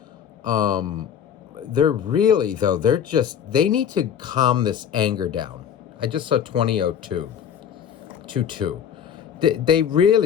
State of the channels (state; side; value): quieter; right; 8.5 dB